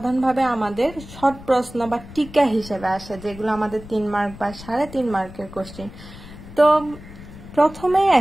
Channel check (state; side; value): noise; left; rumble, 16 dB below the sound